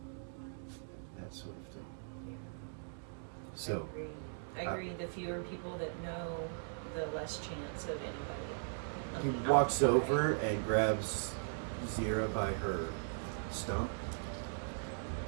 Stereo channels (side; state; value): left; silent; digital silence